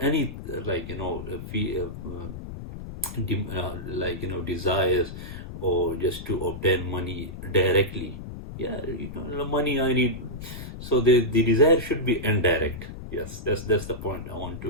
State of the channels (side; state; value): left; noise; rumble, 10 dB below the sound